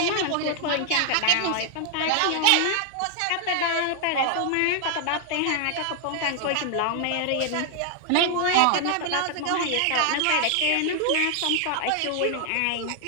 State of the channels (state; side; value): different; both; correlation 0.00